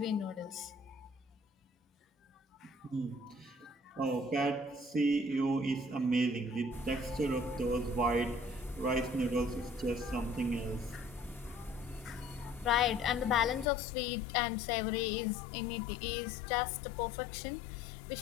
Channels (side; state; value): right; drops out; at 13.7 s